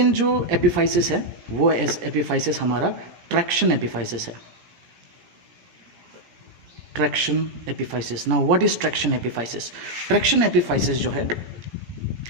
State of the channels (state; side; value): late; left; 17 ms